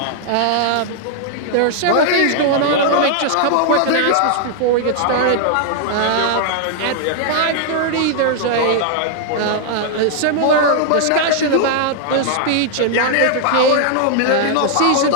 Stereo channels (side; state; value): both; different; correlation 0.00